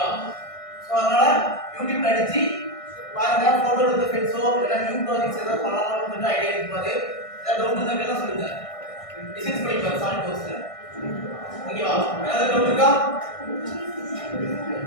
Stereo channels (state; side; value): late; right; 1.6 ms